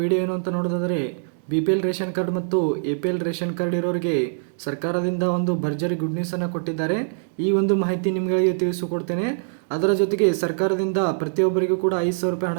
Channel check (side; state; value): left; silent; digital silence